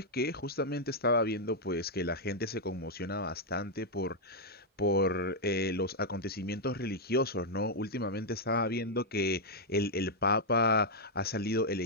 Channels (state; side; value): normal; both; correlation -0.03